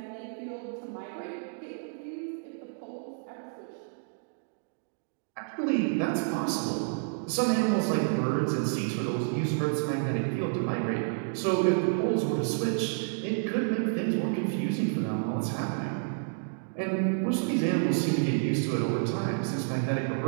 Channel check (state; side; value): silent; left; digital silence